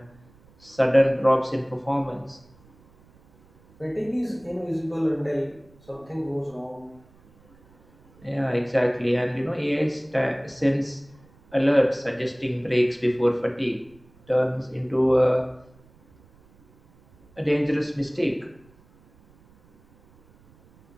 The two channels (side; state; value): right; noise; rumble, 29 dB below the sound